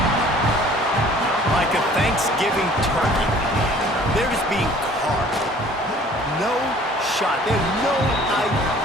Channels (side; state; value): both; normal; correlation 0.52